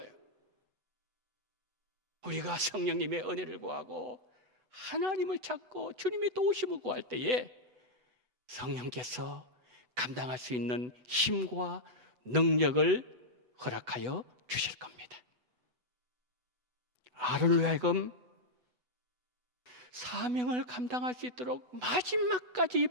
우리가 성령님의 은혜를 구하고 하나님을 찾고 주님의 도우심을 구할 때에 성령께서 감당할 수 있는 힘과 능력을 허락하여 주실 겁니다. 아론을 하여금 사명을 감당할 수 있도록 마지막까지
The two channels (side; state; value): left; late; 8.0 ms